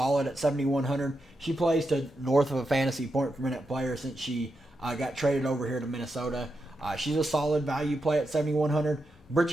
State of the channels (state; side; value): normal; both; correlation 0.86